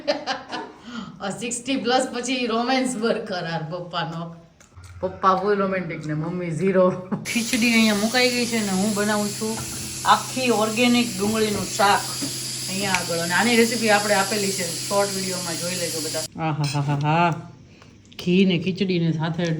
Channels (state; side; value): identical; both; correlation 1.00